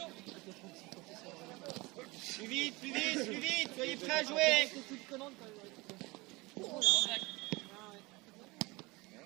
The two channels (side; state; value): left; quieter; 23.6 dB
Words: Plus vite, plus vite, plus vite. Soyez prêts à jouer.